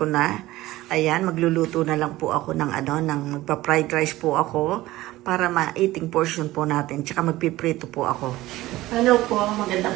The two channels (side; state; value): left; quieter; 17.3 dB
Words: na. Ayan, magluluto na lang po ako ng magpa-fried rice po ako para ma-eating portion po natin, tsaka magpiprito po ako. Hello po,